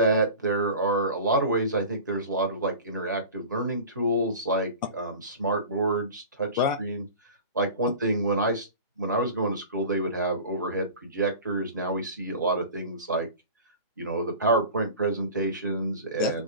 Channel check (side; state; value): both; inverted; correlation -0.37